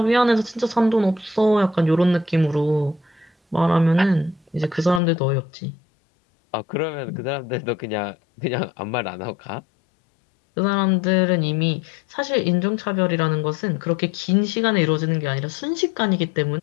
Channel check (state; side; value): drops out; right; at 5.0 s